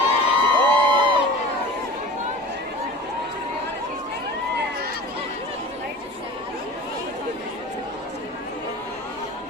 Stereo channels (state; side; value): normal; both; correlation 0.37